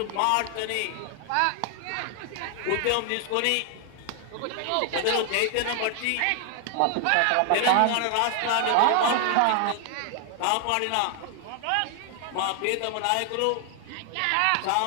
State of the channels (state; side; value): different; both; correlation 0.00